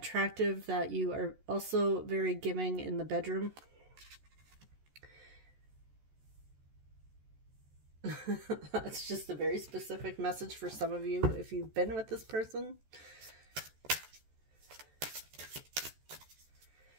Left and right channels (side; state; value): left; late; 14 ms